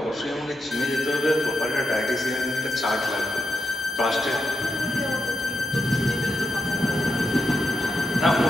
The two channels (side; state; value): both; normal; correlation 0.84